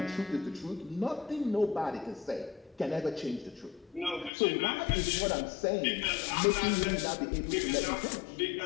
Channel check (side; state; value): right; drops out; at 4.3 s